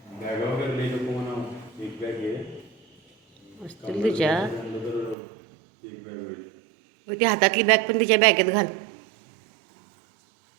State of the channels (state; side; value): drops out; left; at 5.2 s